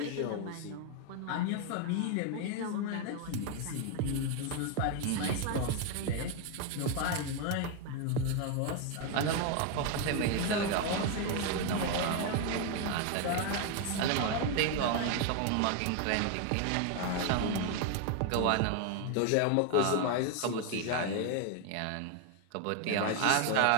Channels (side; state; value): both; different; correlation 0.01